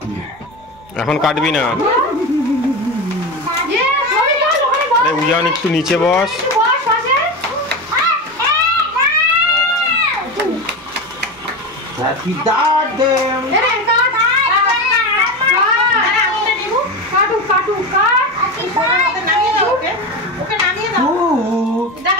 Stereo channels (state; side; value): normal; both; correlation 0.21